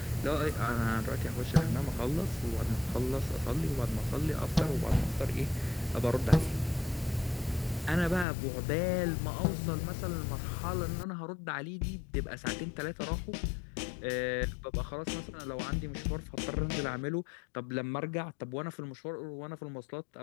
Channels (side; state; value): right; drops out; at 8.2 s